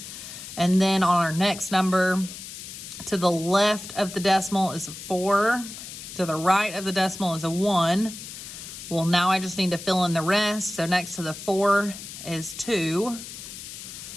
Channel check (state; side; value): noise; left; hiss, 12 dB below the sound